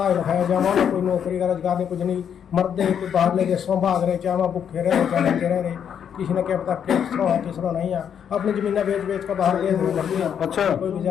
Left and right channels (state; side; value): quieter; right; 8.3 dB